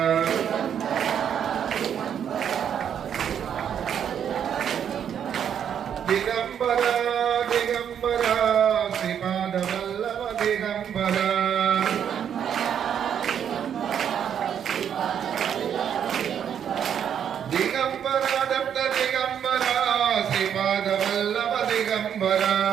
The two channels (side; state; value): left; quieter; 8.7 dB